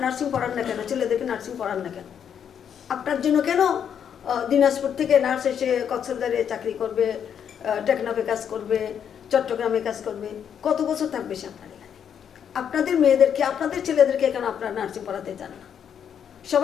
নার্সিং পড়ান না কেন, ছেলেদেরকে নার্সিং পড়ান না কেন? আপনার জন্য কেন দিনাজপুর থেকে নার্স এসে কক্সবাজারে চাকরি করবে, টেকনাফে কাজ করবে, চট্টগ্রামে কাজ করবে, কত বছর থাকবে সে আপনার এখানে? আপনাদের মেয়েদেরকে, আপনাদের ছেলেদেরকে কেন আপনারা নার্সিং পড়াতে চান না?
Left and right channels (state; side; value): quieter; right; 8.3 dB